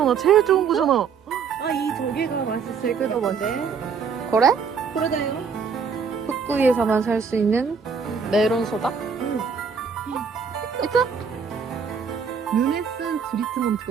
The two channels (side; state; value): left; quieter; 6.1 dB